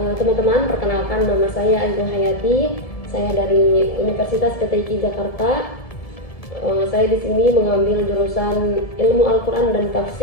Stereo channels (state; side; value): late; right; 1.7 ms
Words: teman-teman, perkenalkan nama saya Ayu Hayati. Saya dari Universitas PTIQ Jakarta. Saya di sini mengambil jurusan Ilmu Al-Quran dan